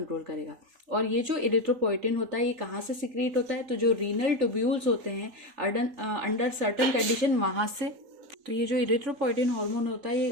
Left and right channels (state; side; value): late; left; 3.8 ms